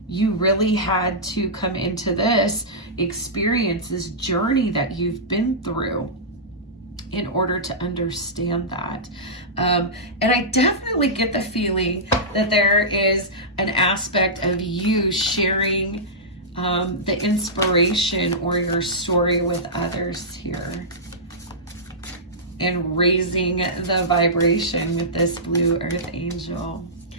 you really had to come into this experience, this journey that you've been through, in order to understand that. And I definitely get the feeling that there is an aspect of you sharing the inspiration or your story with others here, and raising the vibration with this Blue Earth Angel.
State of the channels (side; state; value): both; normal; correlation -0.15